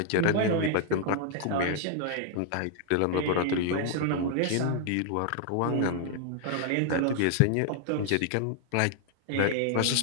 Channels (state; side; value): different; both; correlation 0.00